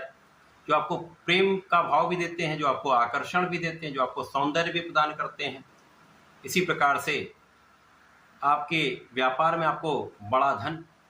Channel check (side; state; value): both; identical; correlation 1.00